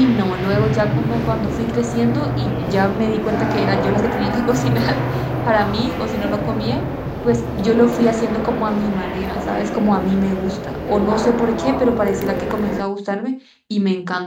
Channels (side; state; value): both; identical; correlation 1.00